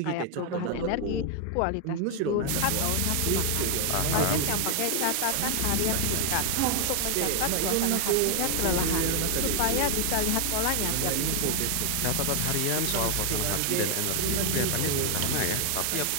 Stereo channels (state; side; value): different; both; correlation 0.00